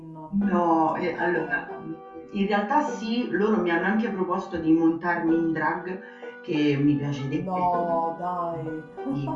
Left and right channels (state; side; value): identical; both; correlation 1.00